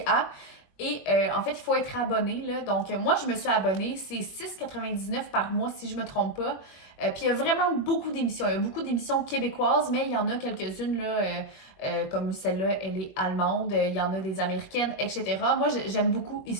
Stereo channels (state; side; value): late; right; 21 ms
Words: Et en fait, il faut être abonné, là. Donc, moi, je me suis abonnée. C'est 6,99 par mois, si je ne me trompe pas. Puis, il y a vraiment beaucoup d'émissions. Il y a beaucoup d'émissions québécoises, mais il y en a quelques-unes, là, comme celle-là, elle est allemande. Il y en a des américaines, etc. Moi, j'aime beaucoup